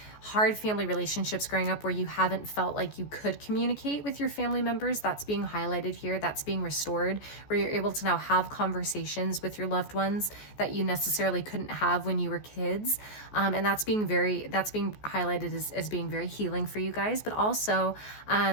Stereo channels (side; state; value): right; late; 14 ms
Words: hard family relationships growing up where you haven't felt like you could communicate with your family members. That's being highlighted here. That's being restored, where you're able to now have conversations with your loved ones that you necessarily couldn't have when you were kids. And that's being highlighted as being very healing for you guys, but also